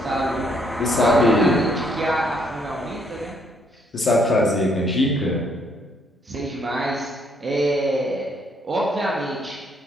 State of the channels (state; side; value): normal; both; correlation 0.69